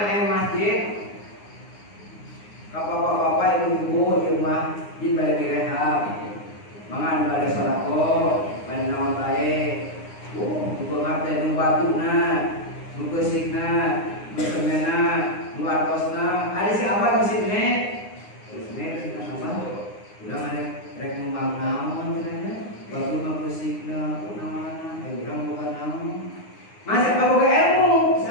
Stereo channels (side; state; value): right; late; 9.7 ms